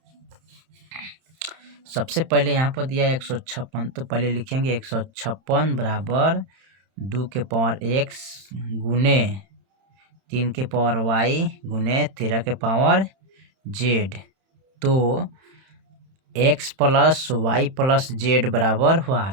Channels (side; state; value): left; late; 31 ms